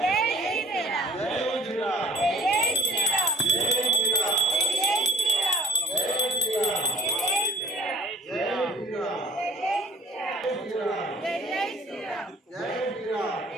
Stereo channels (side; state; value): both; normal; correlation 0.47